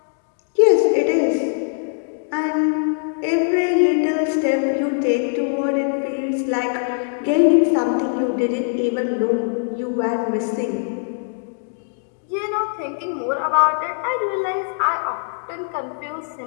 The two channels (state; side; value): silent; right; digital silence